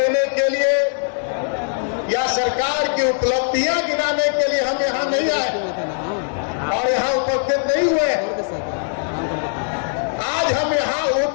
के लिए या सरकार की उपलब्धियां गिनाने के लिए हम यहाँ नहीं आए और यहाँ उपस्थित नहीं हुए। आज हम यहाँ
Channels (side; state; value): right; silent; digital silence